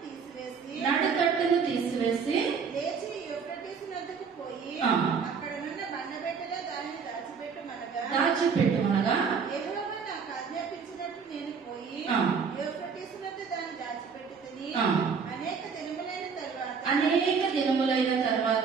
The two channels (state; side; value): quieter; left; 5.8 dB